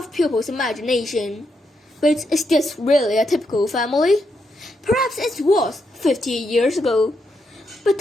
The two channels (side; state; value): both; normal; correlation 0.81